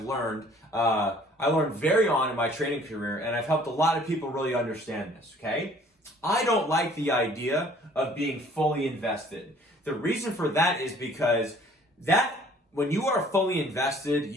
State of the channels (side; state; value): both; normal; correlation 0.55